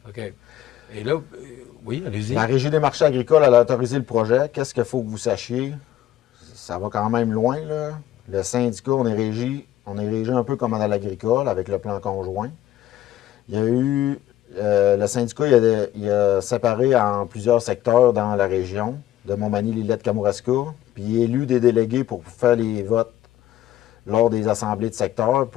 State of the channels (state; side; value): quieter; right; 13.0 dB